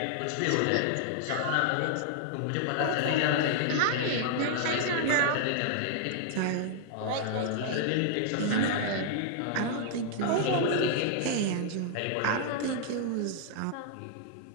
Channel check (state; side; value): different; both; correlation -0.01